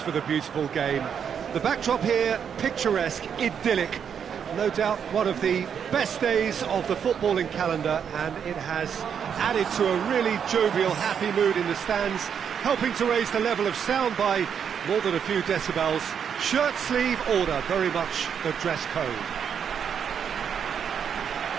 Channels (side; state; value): left; quieter; 7.7 dB